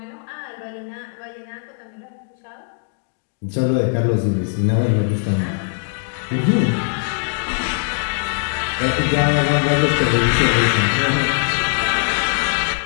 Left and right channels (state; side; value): silent; right; digital silence